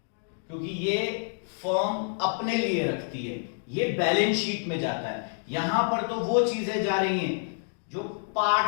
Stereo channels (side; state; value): right; silent; digital silence